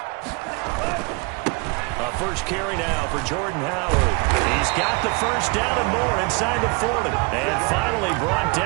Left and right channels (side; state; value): left; quieter; 29.4 dB